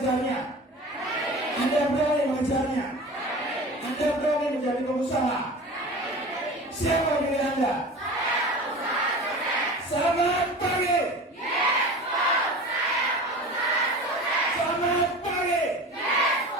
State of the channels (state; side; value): normal; both; correlation 0.35